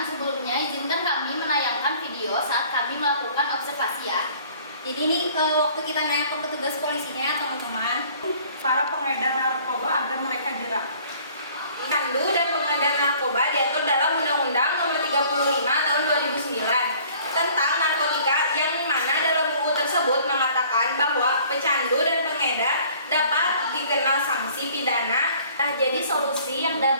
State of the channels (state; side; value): inverted; both; correlation -0.53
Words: sebelumnya izinkan kami menayangkan video saat kami melakukan observasi ya. Jadi ini waktu kita nanya ke petugas polisinya ya teman-teman. Para pengedar narkoba agar mereka jerak. Candu dan pengedar narkoba diatur dalam Undang-Undang Nomor 35 Tahun 2009 tentang narkotika, yang mana dalam UU tersebut mengatakan bahwa pecandu dan pengedar dapat dikenal sanksi pidana. Nah, jadi solusi yang